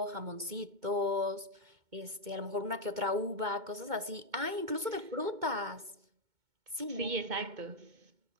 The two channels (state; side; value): late; left; 2.2 ms